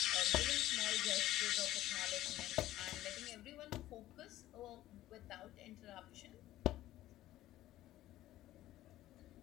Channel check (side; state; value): right; quieter; 14.8 dB